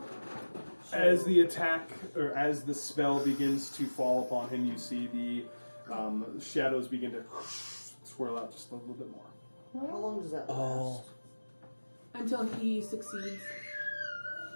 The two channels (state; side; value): inverted; both; correlation -1.00